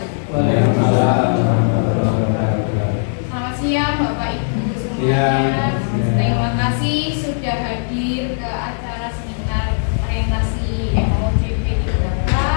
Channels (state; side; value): silent; right; digital silence